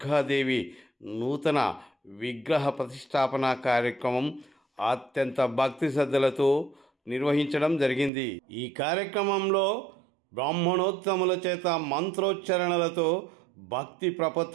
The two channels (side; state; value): left; drops out; at 8.1 s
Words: నూతన విగ్రహ ప్రతిష్టాపన కార్యక్రమం అత్యంత భక్తి శ్రద్ధలతో నిర్వహించడం జరిగింది. ఈ కార్యక్రమంలో బ్రాహ్మణోత్తముల చేత మంత్రోచ్చరణలతో భక్తి